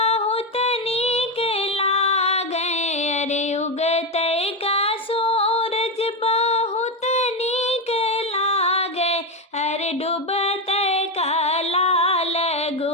नीक लागे। अरे उगते का सूरज बहुत नीक लागे। अरे डूबते का लाल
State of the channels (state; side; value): normal; both; correlation 0.10